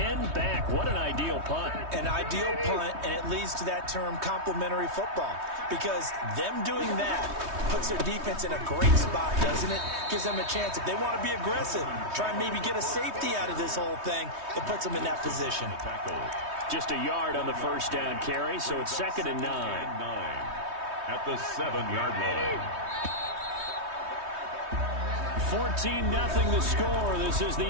back. What an ideal punt. An ideal punt, and it leads to that term complementary football. Because them doing that puts their defense in a great spot, doesn't it? Gives them a chance. If they want to be aggressive, try and maybe get a safety out of this whole thing, it puts them in that position. Just a yard on the first down carry, so it's 2nd and 9. At the 7-yard line. 14-0 the score. This is the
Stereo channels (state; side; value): late; left; 3.2 ms